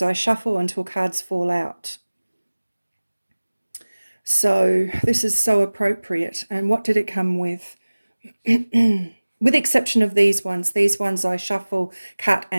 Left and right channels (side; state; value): both; inverted; correlation -1.00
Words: I shuffle until cards fall out. So this is so appropriate. And what did it come with? With exception of these ones I shuffle, cut,